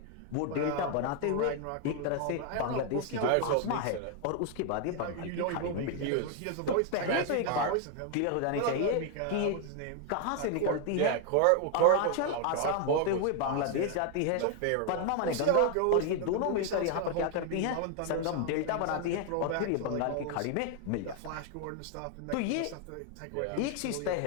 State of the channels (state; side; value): different; both; correlation 0.00